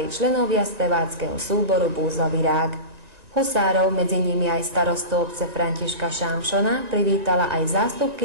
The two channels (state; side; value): late; left; 1.9 ms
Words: členovia speváckeho súboru Búzový rák. Husárov, medzi nimi aj starostu obce Františka Šámšona, privítala aj